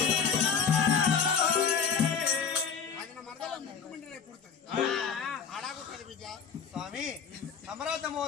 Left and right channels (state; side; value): quieter; right; 6.3 dB